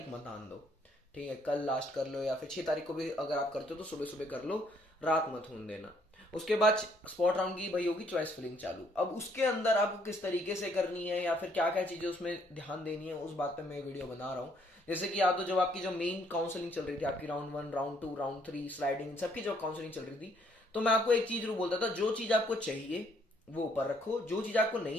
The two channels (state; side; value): normal; both; correlation 0.67